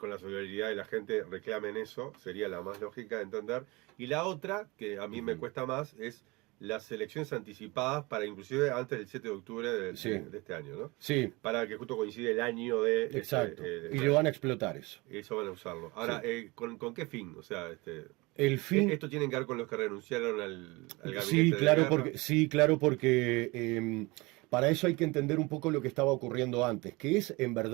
la solidaridad de la gente, reclamen eso. Sería la más lógica de entender. Y la otra, que a mí me cuesta más, es las elecciones anticipadas para inclusive antes del 7 de octubre de este año, ¿no? Sí. Para que justo coincide el año de... Exacto. Y lo van a explotar eso. Eso van a usarlo. Ahora, Sí. ¿con qué fin? O sea, el fin... ¿Esto tiene que ver con los que renunciaron al gabinete Sí, claro, de porque para eso hay que entender un poco lo que estaba ocurriendo antes, que es en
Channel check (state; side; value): quieter; left; 24.2 dB